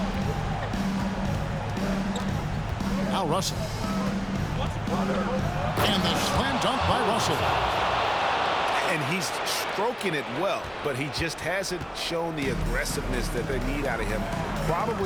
Now Russell. And the slam dunk by Russell. And he's stroking it well, but he just hasn't shown the aggressiveness that they need out of him.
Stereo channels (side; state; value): both; identical; correlation 1.00